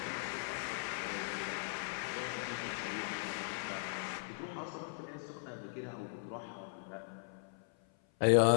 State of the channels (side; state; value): right; silent; 52 dB below the other